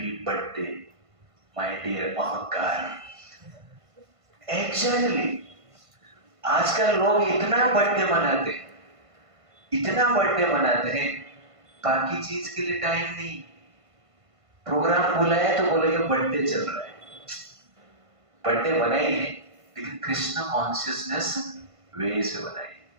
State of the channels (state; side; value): late; left; 1.5 ms